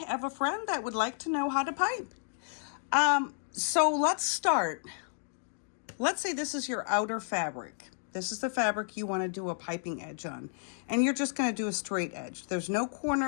have a friend that would like to know how to pipe. So let's start. Let's say this is your outer fabric. This is the fabric you want to do a piping edge on. And you're just going to do a straight edge. There's no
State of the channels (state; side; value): silent; right; digital silence